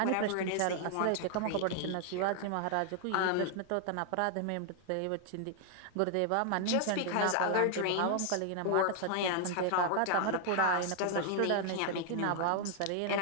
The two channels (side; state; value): both; different; correlation 0.00